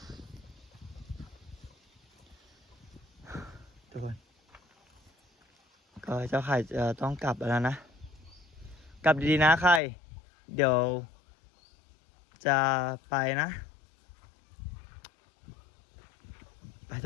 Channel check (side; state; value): right; drops out; at 9.8 s